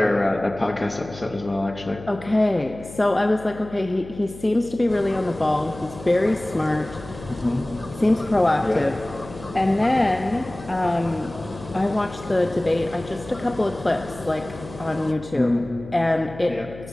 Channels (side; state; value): left; noise; hum, 15 dB below the sound